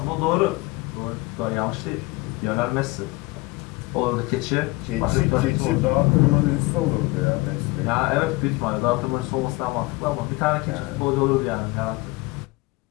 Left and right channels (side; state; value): right; quieter; 22.8 dB